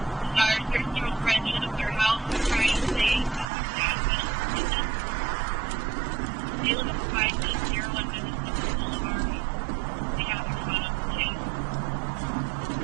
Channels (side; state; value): left; drops out; at 3.5 s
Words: Our 13-year-old friend showed up at their house and trying to say they live at 5801 Minnesota Boulevard. They have their phone up too.